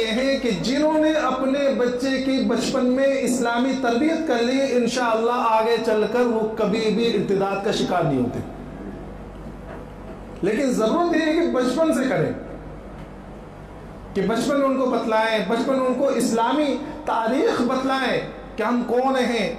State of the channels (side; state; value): both; identical; correlation 1.00